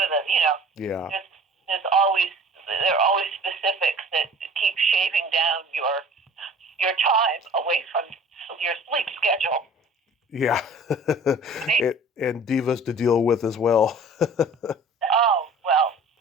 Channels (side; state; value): both; normal; correlation 0.46